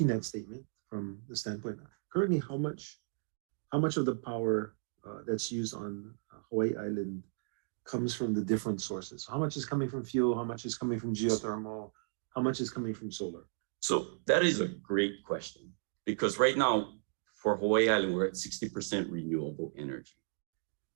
that statement from the standpoint. Currently, how much of the power that's used on Hawaii Island comes from the different sources? How much is coming from fuel? How much is coming from geothermal? How much is coming from solar? So that is a great question, because right now for Hawaii Island, we're at 60% renewable energy.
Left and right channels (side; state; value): left; silent; digital silence